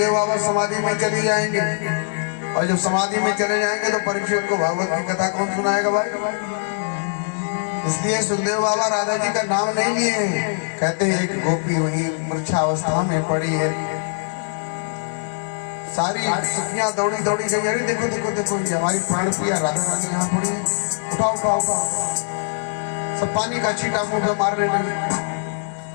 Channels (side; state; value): right; silent; digital silence